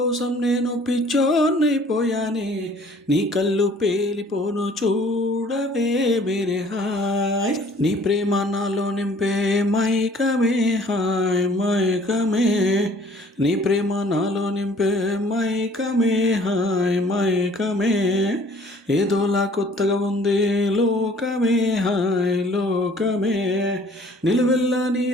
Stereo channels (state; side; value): normal; both; correlation 0.55